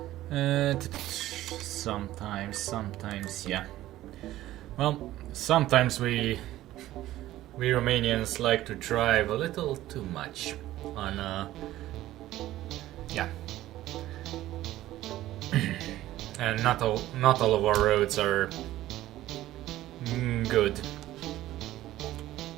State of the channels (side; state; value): left; quieter; 14.9 dB